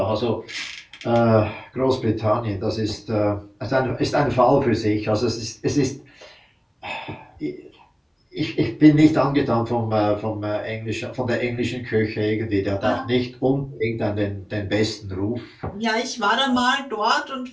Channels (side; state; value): both; identical; correlation 1.00